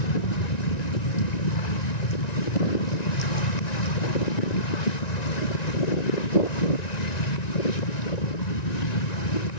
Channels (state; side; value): late; right; 1.9 ms